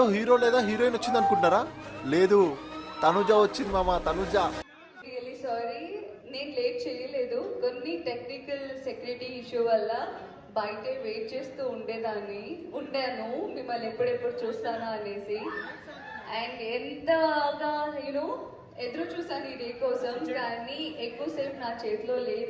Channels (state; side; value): identical; both; correlation 1.00